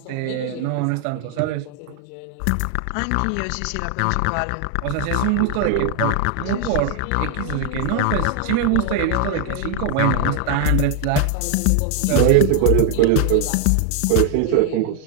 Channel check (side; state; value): both; different; correlation 0.00